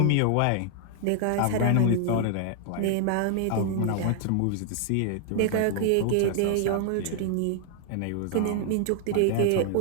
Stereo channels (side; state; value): both; different; correlation 0.00